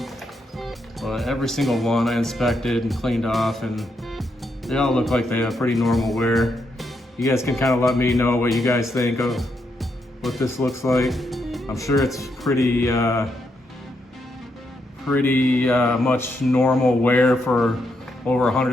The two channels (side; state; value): both; normal; correlation 0.80